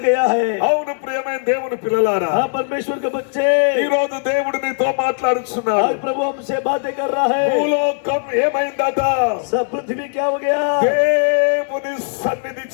गया है. అవును ప్రియమైన దేవుని పిల్లలారా, हाँ परमेश्वर के बच्चे, ఈ రోజు దేవుడు నీతో మాట్లాడుచున్నాడు. आज प्रभु हमसे बातें कर रहा है. భూలోకం ఏమైందట? सब पृथ्वी क्या हो गया? దేవుని సన్నిధి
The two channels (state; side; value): silent; right; digital silence